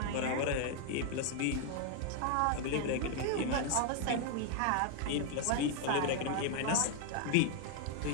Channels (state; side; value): different; both; correlation 0.00